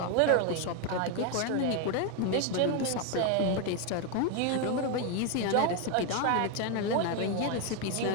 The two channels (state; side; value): different; both; correlation 0.01